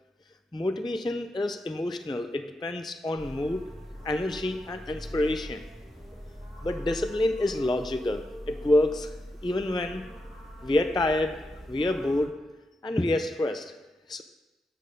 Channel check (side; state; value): both; normal; correlation 0.86